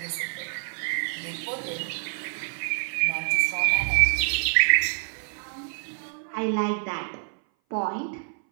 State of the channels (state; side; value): silent; left; 58 dB below the other